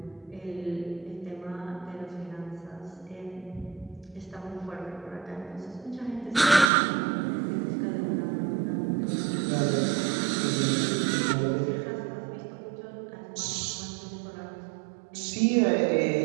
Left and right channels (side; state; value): left; drops out; at 6.7 s